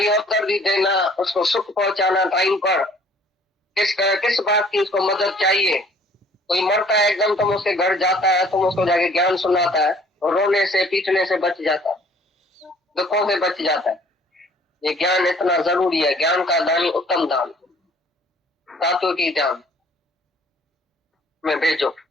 अवसर भी देना, उसको सुख पहुंचाना टाइम पर, किस बात की उसको मदद चाहिए। कोई मरता है एकदम, तुम उसके घर जाता है, तुम उसको जाके ज्ञान सुनाता है, और रोने से पीटने से बच जाता है, दुखों से बच जाता है। ये ज्ञान इतना जरूरी है। ज्ञान का दान उत्तम दान, धातु की ध्यान में भेजो।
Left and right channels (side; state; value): both; normal; correlation 0.56